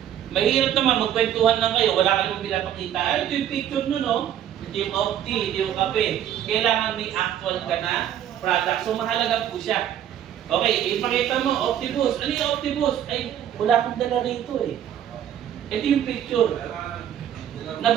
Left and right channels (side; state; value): left; quieter; 10.4 dB